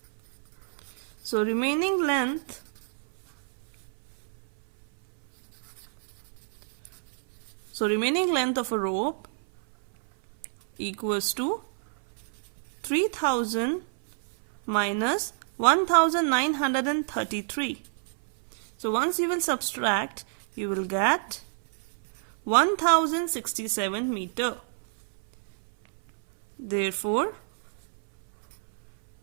So remaining length of a rope equals to 3000 minus 1933. So once you will subtract, you will get 1067 meter. Therefore,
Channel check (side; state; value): left; silent; 58 dB below the other